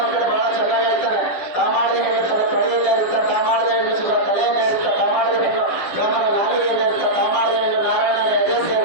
ಕಡೆ ಬಹಳ ಚೆನ್ನಾಗಿ ಹೇಳ್ತಾನೆ, ತಾ ಮಾಡದೆ ಹೆಣ್ಣು ತನ್ನ ತೊಡೆಯಲ್ಲೇ ಇರ್ತ, ತಾ ಮಾಡದೆ ಹೆಣ್ಣು ತಲೆಯನ್ನೇ ಇರ್ತ, ತಾ ಮಾಡದೆ ಹೆಣ್ಣು ಬ್ರಾಹ್ಮಣ ನಾಲಿಗೆಯಲ್ಲೇ ಇರ್ತ, ತಾ ಮಾಡದೆ ಹೆಣ್ಣು ನಾರಾಯಣನ ಎದೆ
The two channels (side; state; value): right; late; 10 ms